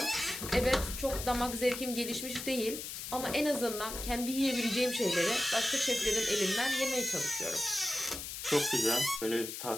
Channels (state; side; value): noise; left; hiss, 7 dB below the sound